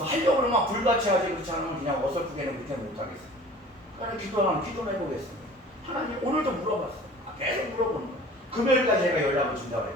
하려고 막 불같이 하지 그렇지 않으면 그냥 어설프게는 그렇게 못하겠어. 그래서 기도를 해보겠습니다. 하나님 오늘도 물어봤어요. 계속 물어보는 거예요. 금요일까지 제가 연락을 준다고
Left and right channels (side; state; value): both; normal; correlation 0.44